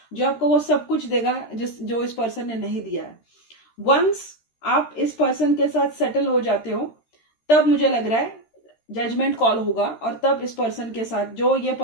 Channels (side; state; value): right; late; 13 ms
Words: जो आपको वो सब कुछ देगा जो इस पर्सन ने नहीं दिया है। वंस आप इस पर्सन के साथ सेटल हो जाते हो, तब मुझे लग रहा है जजमेंट कॉल होगा, और तब इस पर्सन के साथ, जो ये